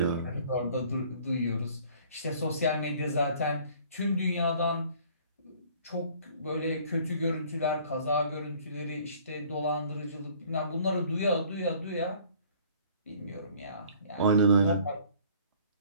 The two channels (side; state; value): both; inverted; correlation -0.54